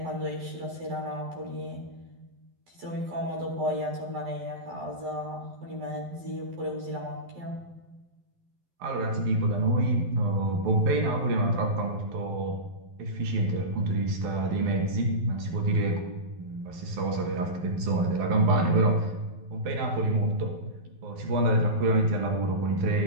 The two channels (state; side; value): late; left; 12 ms